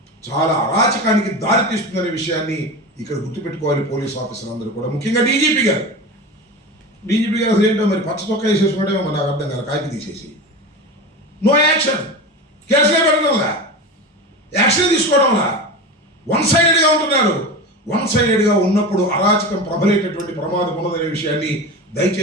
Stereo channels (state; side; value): normal; both; correlation 0.27